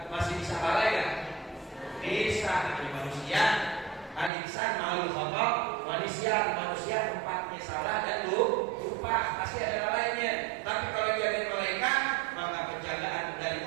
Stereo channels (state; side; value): drops out; left; at 4.3 s